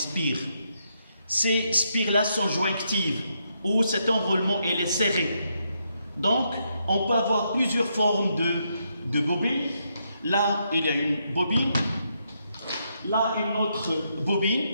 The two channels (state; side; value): inverted; both; correlation -0.79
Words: Ces spires-là sont jointives, où cet enroulement il est serré. Donc, on peut avoir plusieurs formes de bobines. Là, il y a une bobine. Là, une autre